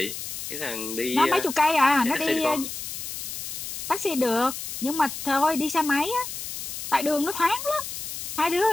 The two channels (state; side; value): noise; left; hiss, 7 dB below the sound